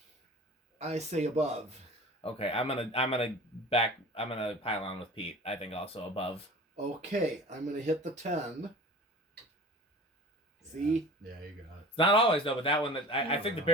I say above. Okay, I'm gonna pile on with Pete. I think also above. Okay, I'm gonna hit the 10. See? Yeah, you got it. It's not always though, but that one I think the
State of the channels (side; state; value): both; normal; correlation 0.40